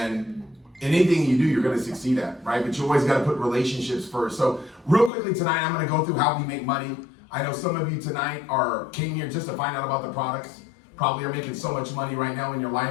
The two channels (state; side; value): drops out; right; at 5.1 s